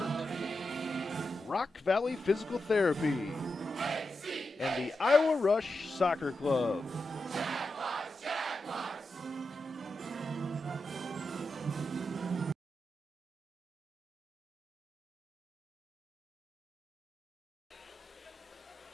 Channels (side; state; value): both; normal; correlation 0.88